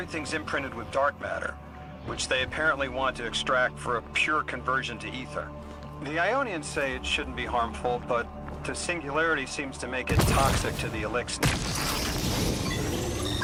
imprinted with dark matter, which they apparently want to extract for a pure conversion to ether. The Ionians say it shouldn't be harmful, but the singularity seems to make it toxic to the Elixir.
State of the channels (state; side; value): identical; both; correlation 1.00